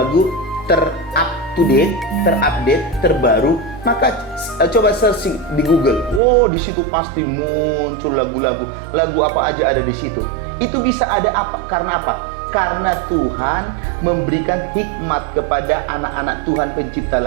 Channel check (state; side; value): drops out; left; at 6.2 s